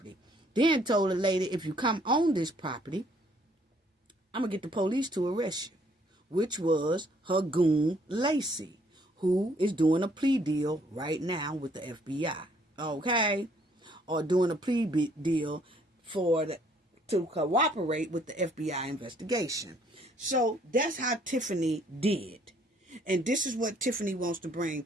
Then told the lady, if you come on this property, I'm going to get the police to arrest you. Which was her goon, Lacey, who is doing a plea deal right now with the FBI. Okay? Or doing a plea deal to cooperate with the FBI investigation. So that's how Tiffany did. And this is what Tiffany wants to bring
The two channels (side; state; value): both; normal; correlation 0.64